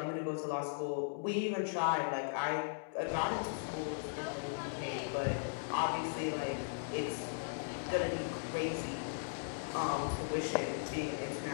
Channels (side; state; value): right; silent; digital silence